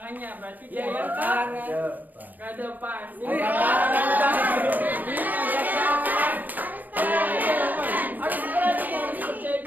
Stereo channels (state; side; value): late; left; 0.084 ms